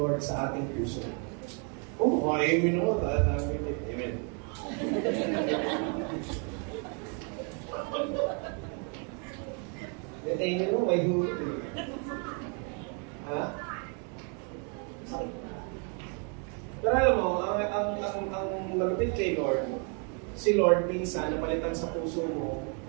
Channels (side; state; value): left; quieter; 38.0 dB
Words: sa ating puso. Amen ako. Amen. Amen mo, may hulot eh. Ha? Pero alam mo, ang malapit kay Lord, si Lord minsan napalitan sa puso mo,